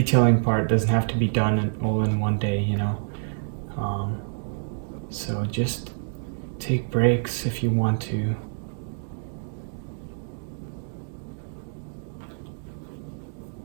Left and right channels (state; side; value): silent; left; digital silence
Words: part, doesn't have to be done all in one day, you know. So just take breaks if you want to.